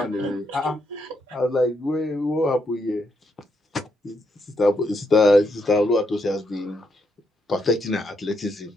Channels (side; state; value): both; normal; correlation 0.78